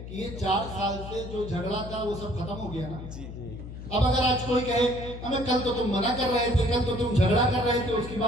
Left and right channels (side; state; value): left; noise; hum, 11 dB below the sound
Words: کہ یہ 4 سال سے جو جھگڑا تھا وہ سب ختم ہو گیا نا. اب اگر آج کوئی کہے ہمیں کل تو تم منع کر رہے تھے, کل تو تم جھگڑا کر رہے تھے, اس کی